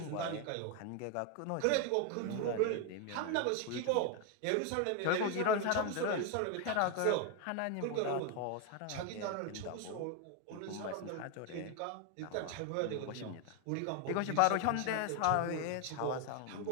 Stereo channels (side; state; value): both; different; correlation 0.01